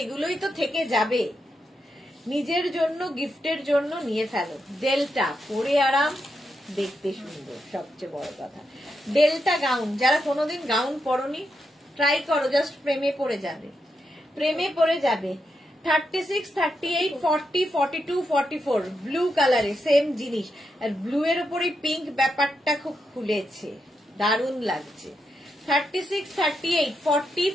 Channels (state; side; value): normal; both; correlation 0.84